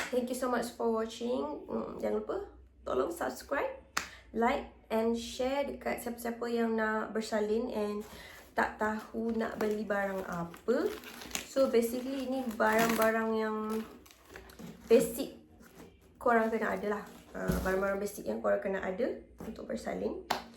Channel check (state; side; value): identical; both; correlation 1.00